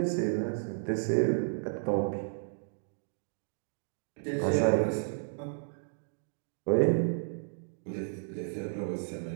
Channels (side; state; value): left; silent; digital silence